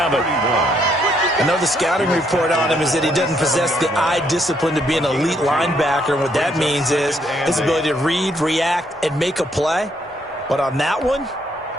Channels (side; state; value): both; normal; correlation 0.72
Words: I know the scouting report on him is that he doesn't possess the eye discipline to be an elite linebacker. And what that means is his ability to read, react, and make a play. But on that one,